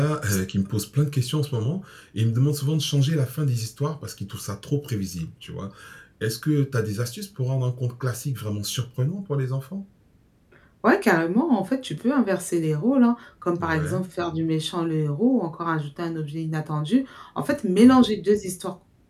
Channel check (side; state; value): both; identical; correlation 1.00